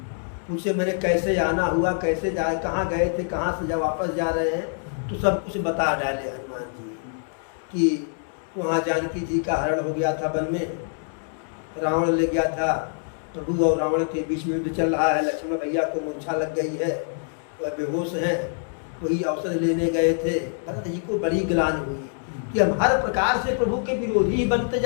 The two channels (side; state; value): right; silent; digital silence